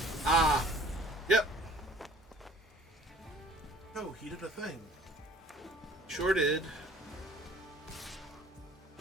Ah. Yep. Oh, he did a thing. Sure did.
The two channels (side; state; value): both; normal; correlation 0.52